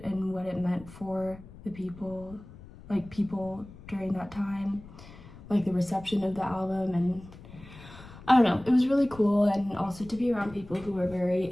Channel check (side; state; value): left; noise; rumble, 18 dB below the sound